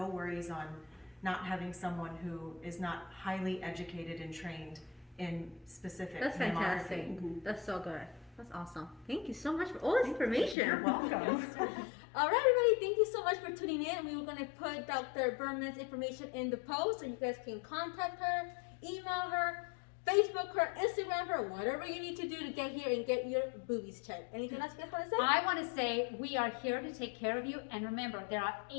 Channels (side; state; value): right; drops out; at 10.6 s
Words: worries on not having someone who is not highly educated and trained in specific That's mammography. fantastic. That's so good. That's awesome. Thank you so much for all this information. You're welcome. All right, everybody, thank you so much for tuning in. We were going to put Dr. Berman's information in the post so you guys can contact her, email her, Facebook her, Instagram her, whatever you need to do to get here and get your boobies checked. Anything else you guys want to say? I want to say we are here to take care of you. And remember, there are